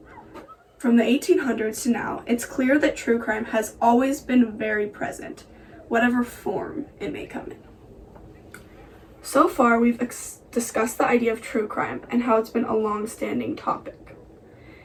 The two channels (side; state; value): both; identical; correlation 1.00